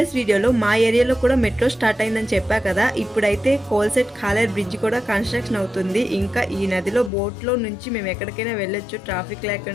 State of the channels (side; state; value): right; drops out; at 7.1 s